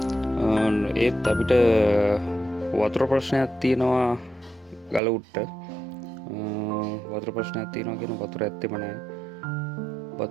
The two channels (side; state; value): left; drops out; at 5.0 s